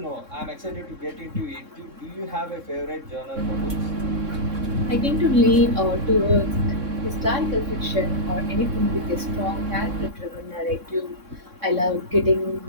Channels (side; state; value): left; late; 3.6 ms